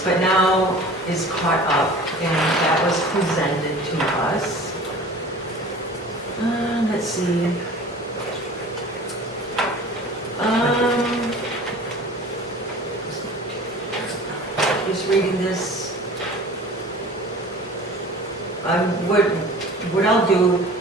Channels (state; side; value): normal; both; correlation 0.42